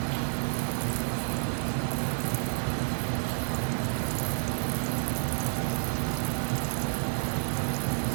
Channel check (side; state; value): left; silent; digital silence